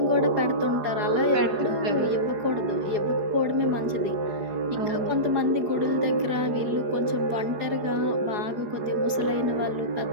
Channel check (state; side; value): late; left; 4.8 ms